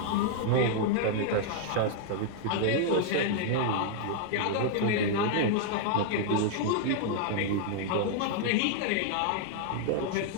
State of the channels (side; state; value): both; different; correlation -0.01